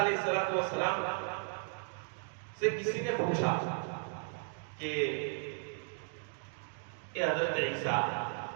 السلام سے کسی نے پوچھا کہ اے حضرت عیسیٰ،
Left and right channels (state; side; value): silent; left; 54 dB below the other